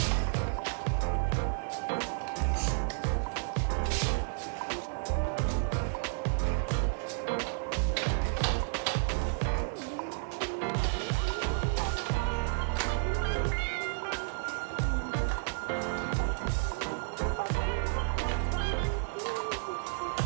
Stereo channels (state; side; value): silent; left; 57 dB below the other